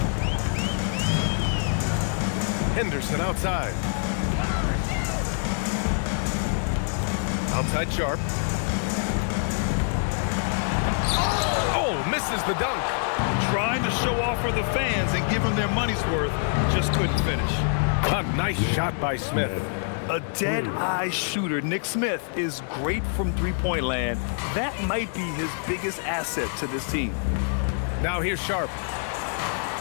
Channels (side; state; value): right; silent; 61 dB below the other